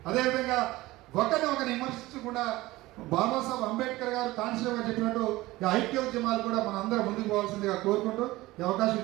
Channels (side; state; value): left; quieter; 18.7 dB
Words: అదేవిధంగా ఒకరిని విమర్శించకుండా బాబాసాహెబ్ అంబేద్కర్ గారు కాన్స్టిట్యూషన్ గారు చెప్పినట్టు ఈ ఐక్య ఉద్యమాలు కూడా మన అందరం ముందుకు పోవాల్సిందిగా కోరుకుంటూ ఈ అవకాశం